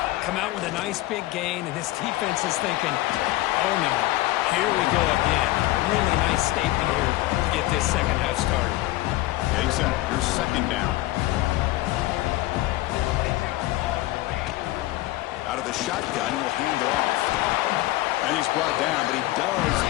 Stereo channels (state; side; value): quieter; right; 17.5 dB